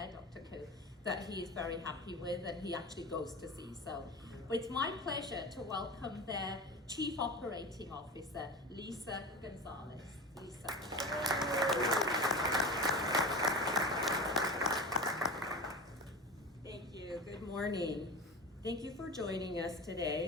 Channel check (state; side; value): normal; both; correlation 0.29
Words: Dr. Koo, that he is very happy with and he actually goes to see. So it's my pleasure to welcome their Chief Operating Officer, Lisa Gonzalez. Lisa. Thank you. Good morning. Thank you for joining us